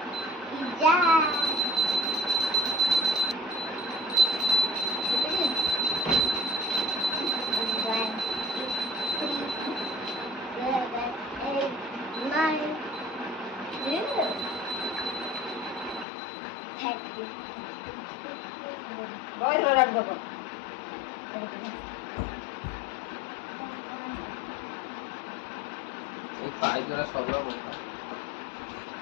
इजा बहुत बड़ा बाबा ए पाई जरा सबला मोटा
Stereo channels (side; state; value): right; drops out; at 16.1 s